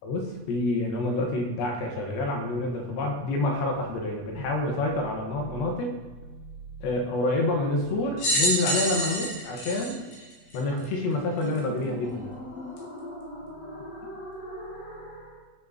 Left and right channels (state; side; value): late; right; 8.3 ms